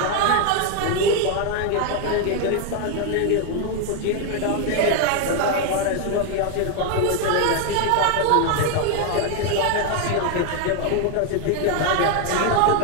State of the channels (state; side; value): different; both; correlation 0.01